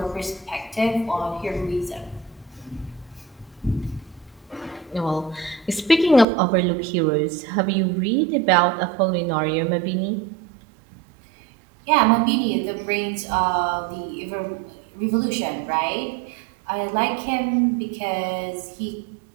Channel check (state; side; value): drops out; left; at 6.2 s